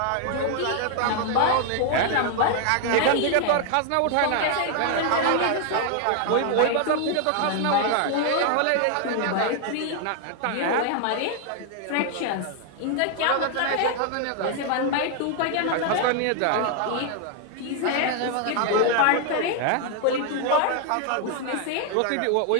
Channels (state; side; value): different; both; correlation 0.00